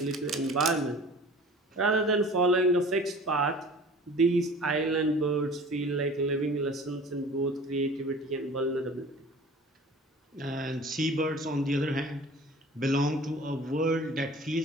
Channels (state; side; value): normal; both; correlation 0.44